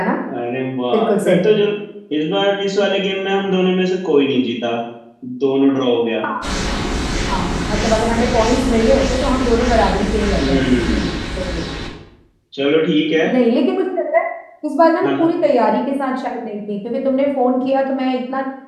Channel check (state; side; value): identical; both; correlation 1.00